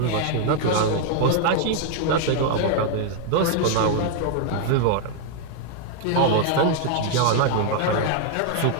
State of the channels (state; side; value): different; both; correlation 0.00